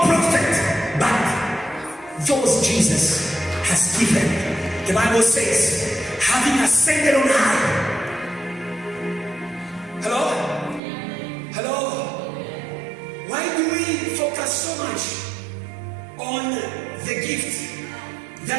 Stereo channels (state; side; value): drops out; left; at 10.8 s